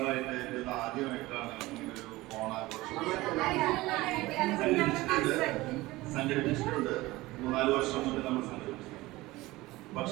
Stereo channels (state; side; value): quieter; left; 19.5 dB